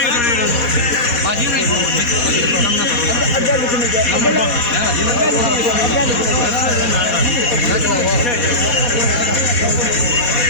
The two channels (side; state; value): right; late; 4.2 ms